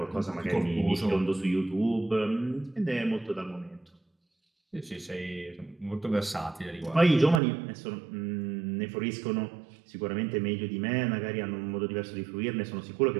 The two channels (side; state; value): left; drops out; at 7.4 s